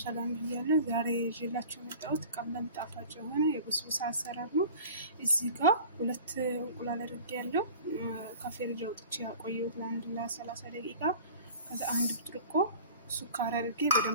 ብያለሁ። ዛሬ ይዤላችሁ የመጣሁት ቀላል ጣፋጭ የሆነ የበስቡሳ አሰራር ነው። እዚህ ጋር 2 እንቁላል አድርጌያለሁ። ከፍሪጅ አውጥቼ ያቆየሁት ለ30 ደቂቃ። ከዛ 1 ብርጭቆ ሱካር አድርጌ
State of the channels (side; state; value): both; inverted; correlation -0.41